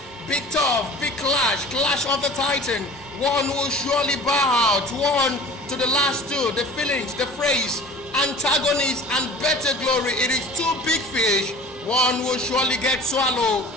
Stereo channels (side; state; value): both; normal; correlation 0.41